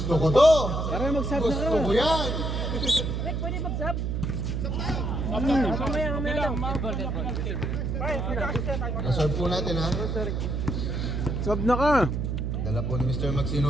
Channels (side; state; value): right; noise; hum, 1 dB below the sound